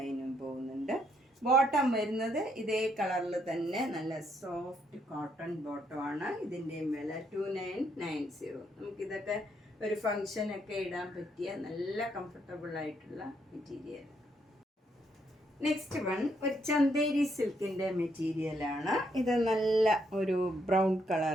പോകുന്നുണ്ട്. ബോട്ടം വരുന്നത് ഇതേ കളറിൽ തന്നെ നല്ല സോഫ്റ്റ് കോട്ടൺ ബോട്ടമാണ്. ഇതിൻ്റെയും വില 2990. നമുക്കിതൊക്കെ ഒരു ഫങ്ഷനൊക്കെ ഇടാൻ പറ്റിയ നല്ല കംഫർട്ടബിൾ ആയിട്ടുള്ള മെറ്റീരിയൽ. നെക്സ്റ്റ് വൺ ഒരു ചന്തേരി സിൽക്കിൻ്റെ മെറ്റീരിയലാണ്. ഇത് നല്ല ഒരു ബ്രൗൺ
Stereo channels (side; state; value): both; normal; correlation 0.73